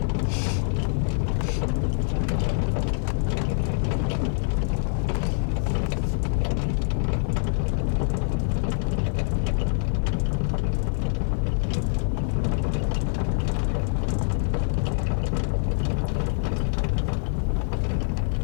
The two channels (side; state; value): right; silent; digital silence